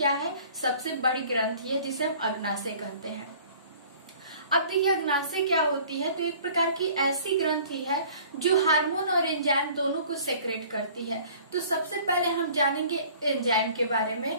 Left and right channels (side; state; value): both; inverted; correlation -0.50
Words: है? सबसे बड़ी ग्रंथि है, जिसे हम अग्नाशय कहते हैं। अब देखिए अग्नाशय क्या होती है? तो एक प्रकार की ऐसी ग्रंथि है जो हार्मोन और एंजाइम दोनों को सेक्रेट करती है। तो सबसे पहले हम जानेंगे एंजाइम के बारे